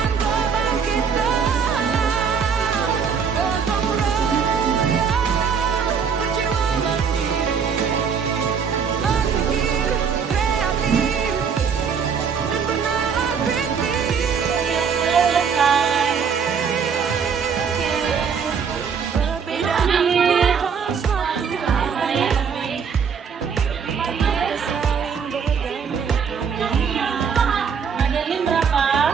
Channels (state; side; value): quieter; left; 6.5 dB